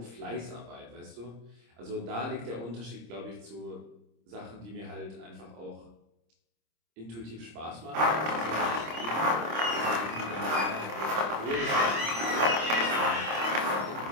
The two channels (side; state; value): left; late; 26 ms